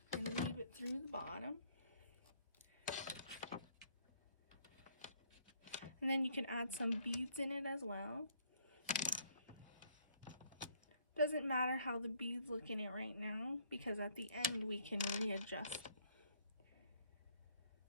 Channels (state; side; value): inverted; both; correlation -0.64